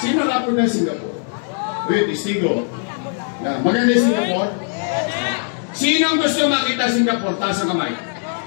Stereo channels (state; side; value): silent; right; 61 dB below the other